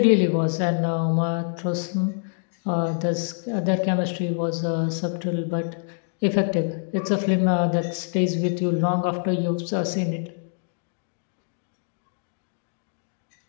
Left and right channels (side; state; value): right; silent; 61 dB below the other